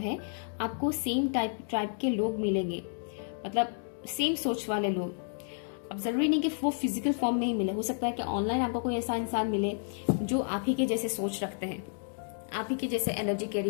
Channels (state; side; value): silent; right; digital silence